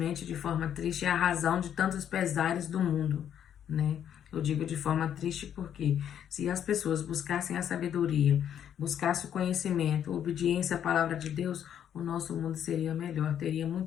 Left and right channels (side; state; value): right; quieter; 9.5 dB